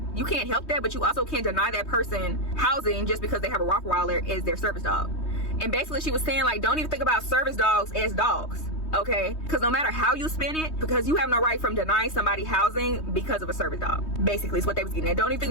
You can't help that, but you also can't deny that person housing just because they have a Rottweiler as their service dog. And basically she was saying like, don't even think about service dogs as dogs. Okay, because no matter how you spin it, because you have no right from denying somebody housing because of a service dog. Basically is what they was getting at. Don't even think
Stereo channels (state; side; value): late; right; 3.2 ms